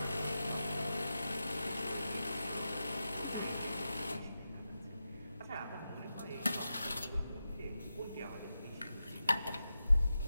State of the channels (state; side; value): inverted; both; correlation -0.91